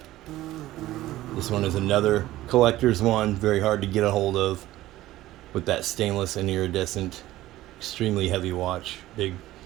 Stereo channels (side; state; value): left; quieter; 15.7 dB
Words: This one is another collector's one, very hard to get a hold of, with that stainless and iridescent, extremely heavy watch, big